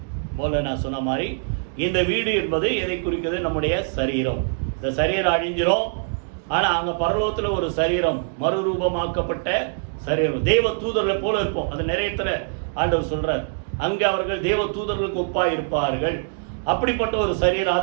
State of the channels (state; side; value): silent; left; digital silence